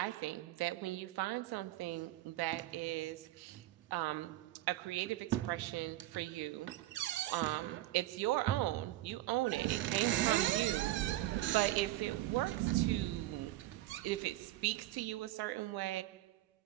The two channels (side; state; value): left; quieter; 16.0 dB